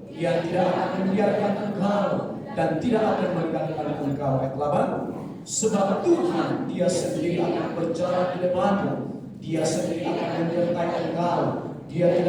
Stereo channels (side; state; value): both; identical; correlation 1.00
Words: Dia tidak akan membiarkan engkau dan tidak akan meninggalkan engkau. Ayat 8. Sebab Tuhan, Dia sendiri akan berjalan di depanmu. Dia sendiri akan menyertai engkau. Dia